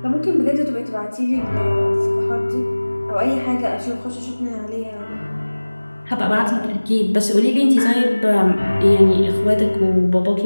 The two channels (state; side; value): inverted; both; correlation -1.00